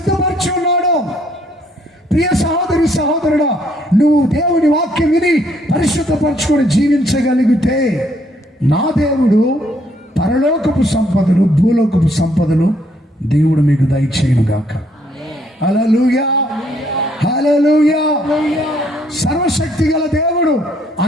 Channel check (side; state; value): both; normal; correlation 0.68